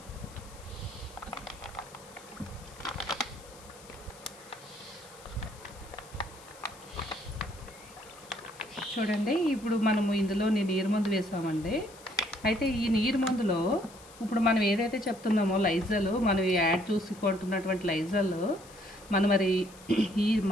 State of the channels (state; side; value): noise; left; hiss, 21 dB below the sound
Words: చూడండి, ఇప్పుడు మనము ఇందులో నీరు మందు వేసామండి. అయితే ఈ నీరు మందులో ఇప్పుడు మనం ఏదైతే చెప్తున్నామో లైజల్, మనం యాడ్ చూసుకుంటున్నటువంటి లైజల్ మనం మరి ఈ